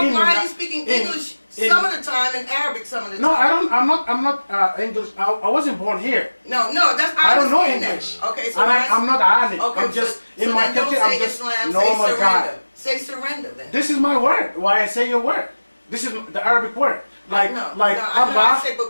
are you speaking in- English in- some of the time and Arabic some of the time? No, I don't. I'm not English. I wasn't born here. No, that's I don't know understand that. English. Okay, so And I'm not alim. Okay, I'm just so in my then don't country. say I'm just Islam, normal say guy. surrender. Say surrender then. This is my word. Why I say your word? This is the Arabic word. Like no, Allah I say, but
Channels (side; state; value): both; inverted; correlation -1.00